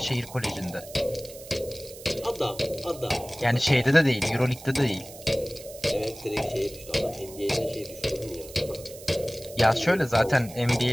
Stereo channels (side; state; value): right; noise; hiss, 17 dB below the sound